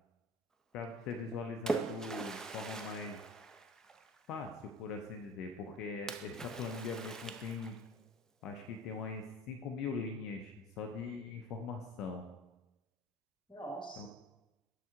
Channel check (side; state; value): both; normal; correlation 0.43